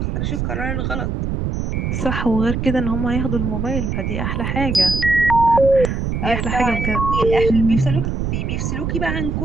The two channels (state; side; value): noise; right; rumble, 2 dB below the sound